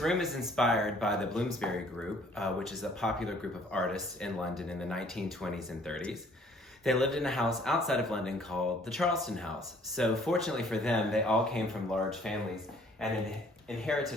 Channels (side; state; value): both; normal; correlation 0.58